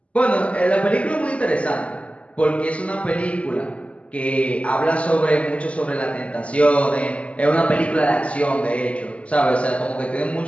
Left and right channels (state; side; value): late; right; 0.063 ms